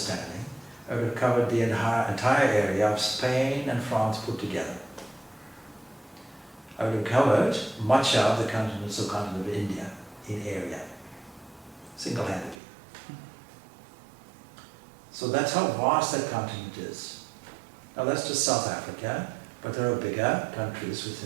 I would have covered the entire area of Spain and France put together. I would have covered much of the continental continent of India in area, single-handedly. So that's how vast that continent is. Now that's just South Africa, but there are bigger countries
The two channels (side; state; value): left; drops out; at 12.6 s